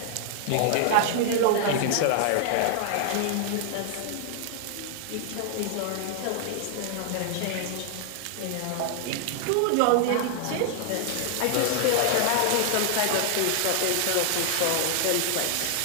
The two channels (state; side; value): different; both; correlation 0.00